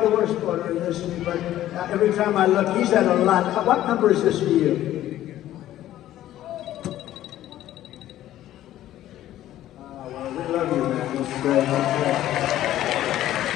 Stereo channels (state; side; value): quieter; right; 13.3 dB